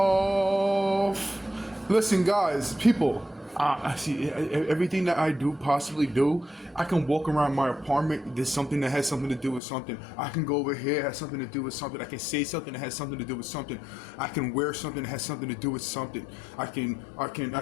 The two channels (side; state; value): right; drops out; at 9.6 s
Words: Listen, guys, people. I see everything that I do possibly do. I can walk around my apartment. There's something that has something to do with something. I can go over here, has something to do with something. I can say something that has something to do with something. I can wear something that has something to do with something. I can.